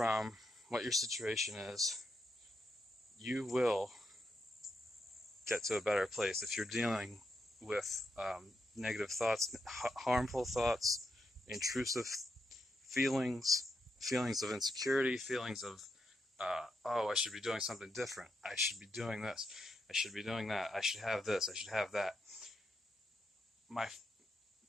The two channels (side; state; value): both; normal; correlation 0.82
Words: what your situation is. You will get to a better place if you're dealing with negative thoughts, harmful thoughts, intrusive feelings of insecurity, feelings of, I should be doing something different. I should be doing this. I should be doing that. I should have this. I should have that.